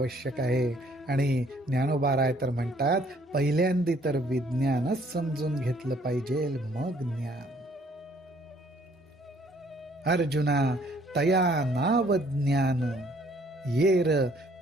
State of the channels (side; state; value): both; normal; correlation 0.62